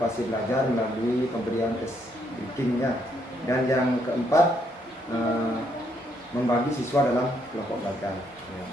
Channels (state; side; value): normal; both; correlation 0.73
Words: belajar melalui pemberian breakingnya. Dan yang keempat membagi siswa dalam kelompok belajar. Ya.